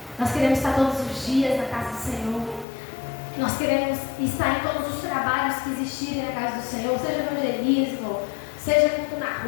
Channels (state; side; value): drops out; right; at 2.7 s